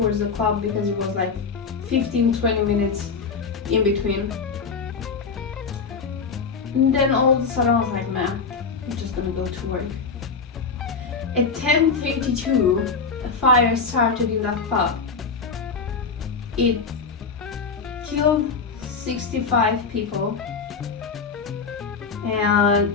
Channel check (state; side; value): quieter; right; 5.0 dB